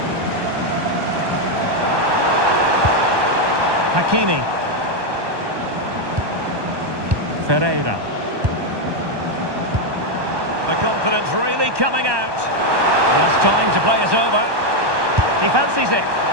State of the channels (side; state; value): left; late; 1.2 ms